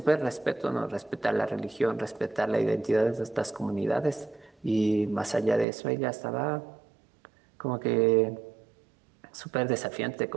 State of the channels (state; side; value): drops out; left; at 5.7 s